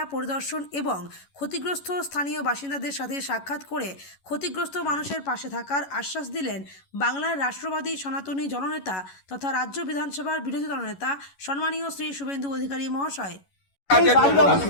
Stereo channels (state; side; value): late; right; 11 ms